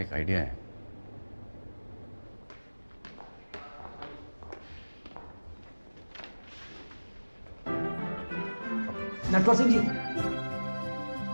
एक आइडिया है। नटवर सिंह जी,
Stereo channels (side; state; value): both; inverted; correlation -1.00